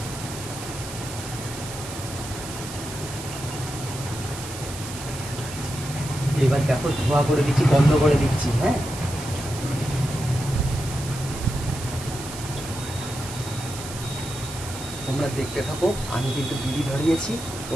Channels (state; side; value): noise; right; hiss, 11 dB below the sound